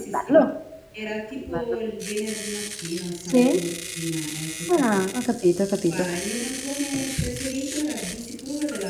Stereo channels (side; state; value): both; identical; correlation 1.00